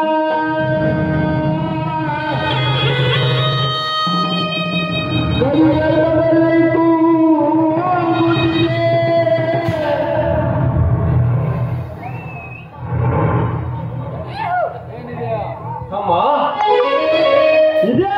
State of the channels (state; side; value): identical; both; correlation 1.00